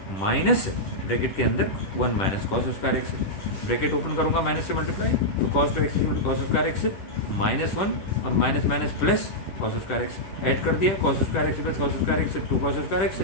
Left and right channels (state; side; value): late; right; 10 ms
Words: minus bracket के अंदर 1 minus cos square x, bracket open करूंगा माइनस से मल्टीप्लाई, तो cos 2x equal to cos square x minus 1 और minus minus plus cos square x add कर दिया, cos square x plus cos square x 2 cos square x